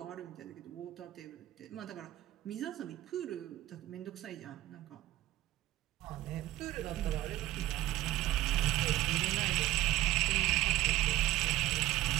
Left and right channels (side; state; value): left; quieter; 15.1 dB